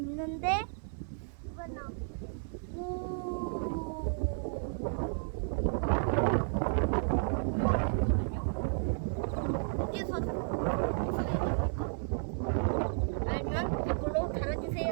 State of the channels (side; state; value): left; silent; digital silence